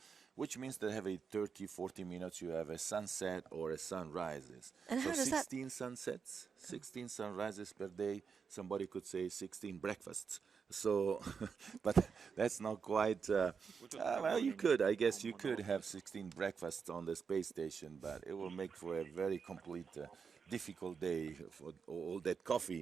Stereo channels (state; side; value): quieter; left; 6.0 dB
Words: which means that every 30, 40 minutes you have a sunset or a sunrises. And So how does that 16 sunsets, 16 sunrises per day. Somebody could say 16 breakfasts. So, but that's not quite. Well, you could, I guess, you could have 16 breakfasts on the space station, but it will make for a very complete, difficult day for all that